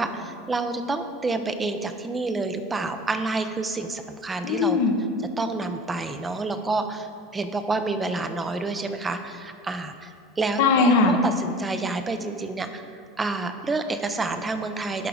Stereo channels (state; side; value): normal; both; correlation 0.42